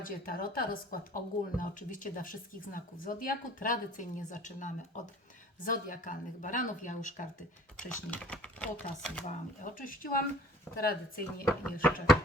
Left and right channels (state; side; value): normal; both; correlation 0.49